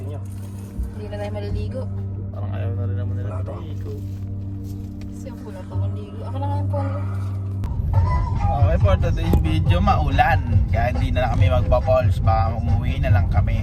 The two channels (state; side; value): identical; both; correlation 1.00